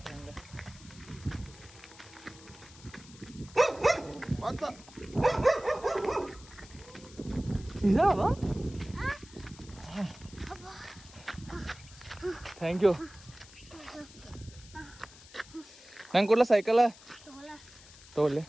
ಹಂಗ ಇದಾವ ಥ್ಯಾಂಕ್ ಯು ನಂಗೆ ಕೊಡ್ಲ ಸೈಕಲ ತಗೊಳ್ಳಿ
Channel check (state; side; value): noise; left; hiss, 20 dB below the sound